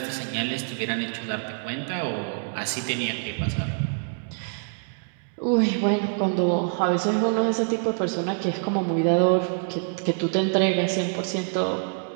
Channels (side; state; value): left; silent; 61 dB below the other